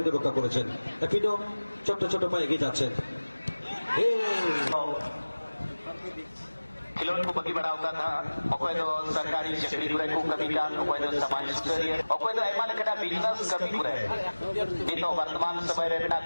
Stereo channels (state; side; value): inverted; both; correlation -1.00